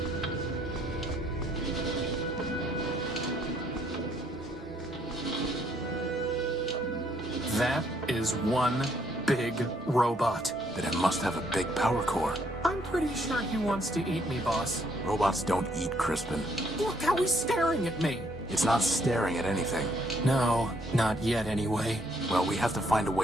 That is one big robot. Then it must have a big power core. I'm pretty sure he wants to eat me, boss. Robots don't eat, Crispin. Look how he's staring at me. It's not staring at anything. No, not yet anyway. Well, we have to find a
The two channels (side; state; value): both; normal; correlation 0.69